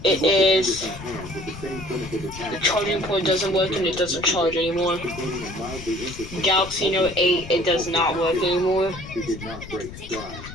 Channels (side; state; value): left; noise; rumble, 13 dB below the sound